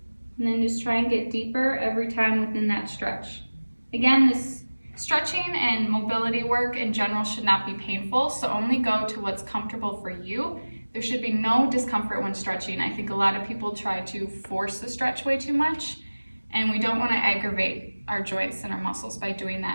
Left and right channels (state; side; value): inverted; both; correlation -1.00